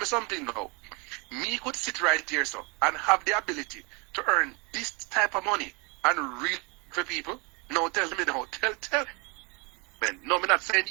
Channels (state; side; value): quieter; left; 30.5 dB